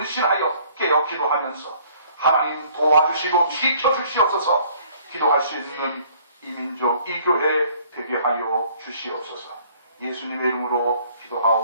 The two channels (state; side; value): inverted; both; correlation -0.58